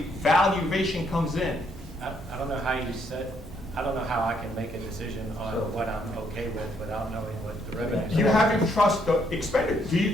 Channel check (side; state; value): both; normal; correlation 0.71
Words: comes in. I don't know how you said, I don't know how I can make a decision on what I'm okay with without knowing what the revenue. You have to trust the expenditure. Do you